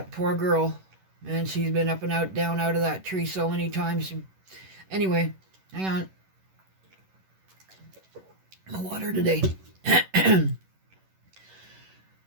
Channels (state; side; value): late; left; 11 ms